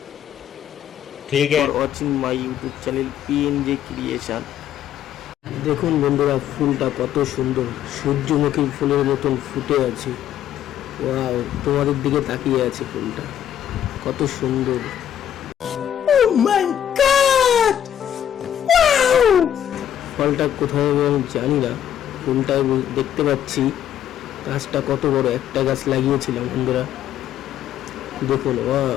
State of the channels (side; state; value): right; quieter; 10.4 dB